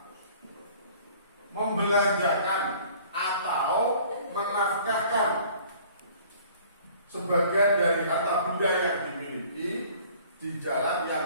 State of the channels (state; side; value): inverted; both; correlation -0.52